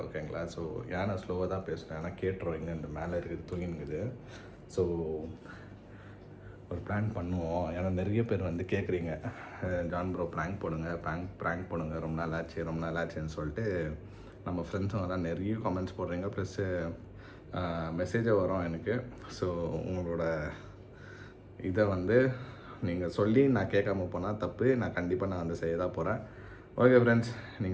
ஓகேங்களா, ஸோ ஏன் நான் ஸ்லோவாக தான் பேசுகிறேன், ஏன்னா கேட்டுருவோம் இங்கே இந்த மேலே இருக்குது தூங்கினுக்குது. ஸோ ஒரு ப்ராங்க் பண்ணுவோம். ஏன்னா நிறைய பேர் வந்து கேட்குறீங்க, ஜான் ப்ரோ ப்ராங்க் போடுங்க, ப்ராங்க் போடுங்க, ரொம்ப நாள் ஆச்சுன்னு சொல்லிட்டு நம்ம ஃப்ரெண்ட்ஸுங்க தான் நிறைய கமெண்ட்ஸ் போடுறீங்க. ப்ளஸ்ஸு மெசேஜை வரும் எனக்கு. ஸோ உங்களோட இதை வந்து நீங்கள் சொல்லி நான் கேட்காம போனால் தப்பு. நான் கண்டிப்பாக நான் வந்து செய்ய தான் போகிறேன். ஓகே ஃப்ரெண்ட்ஸ்,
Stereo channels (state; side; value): identical; both; correlation 1.00